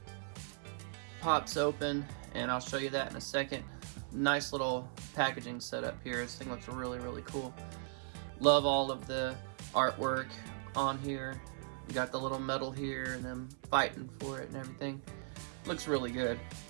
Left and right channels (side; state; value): left; silent; 52 dB below the other